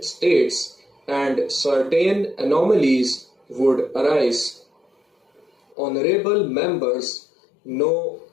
states and certain anomalies would arise. Honorable members know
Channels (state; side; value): drops out; right; at 5.8 s